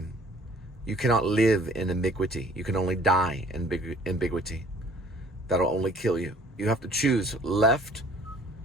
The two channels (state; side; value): normal; both; correlation 0.54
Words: You cannot live in ambiguity. You can only die in ambiguity. That'll only kill you. You have to choose left